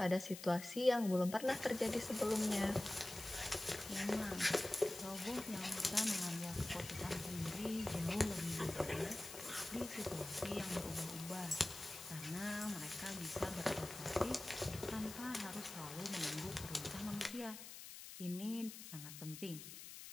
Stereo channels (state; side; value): noise; left; hiss, 11 dB below the sound